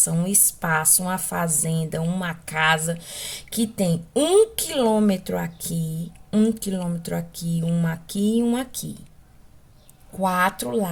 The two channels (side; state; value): both; identical; correlation 1.00